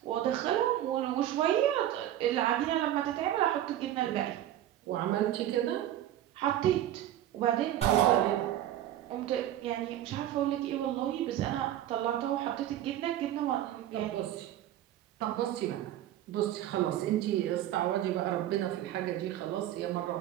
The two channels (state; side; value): quieter; left; 12.4 dB